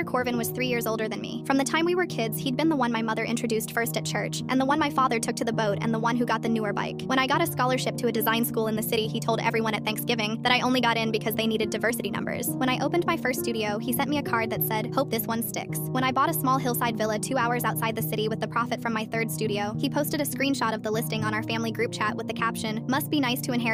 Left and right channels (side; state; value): both; identical; correlation 1.00